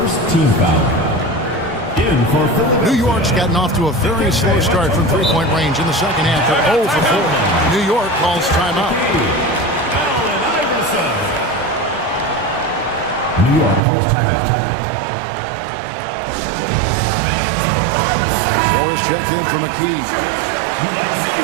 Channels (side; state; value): left; drops out; at 13.8 s